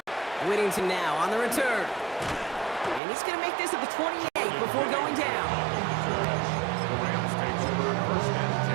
Whittington now on the return. And he's going to make this at the 28 before going down. The Rams take over 1st and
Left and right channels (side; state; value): left; drops out; at 3.0 s